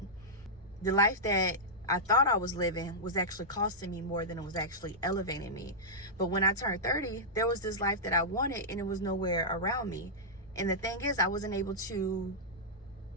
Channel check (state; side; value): normal; both; correlation -0.10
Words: The life that I thought I was living was actually costing me more than it was actually elevating me. But when I turned 30, there was this life that I wanted, and it was nowhere around me. And the thing is, I wasn't able to